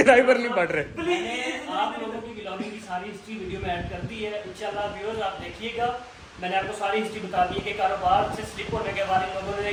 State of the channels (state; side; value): identical; both; correlation 1.00